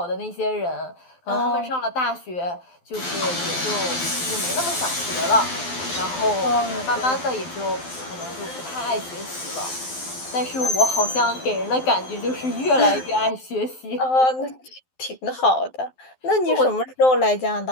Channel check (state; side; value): late; right; 12 ms